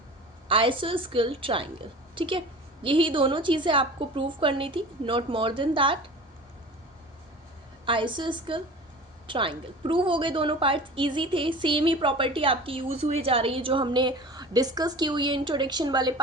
आइसोस्केल ट्राइंगल। ठीक है, यही दोनों चीज़ें आपको प्रूव करनी थी, not more than that. आइसोस्केल triangle prove हो गए, दोनों पार्ट्स इजी थे, सेम ही प्रॉपर्टी आपकी यूज़ हुई जा रही है जो हमने डिस्कस की हुई है इंट्रोडक्शन वाले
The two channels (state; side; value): normal; both; correlation 0.38